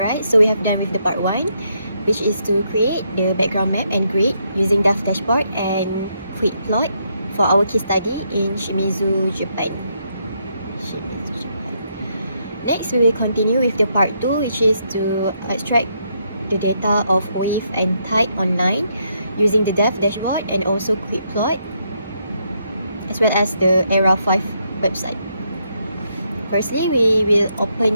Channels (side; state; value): both; inverted; correlation -0.76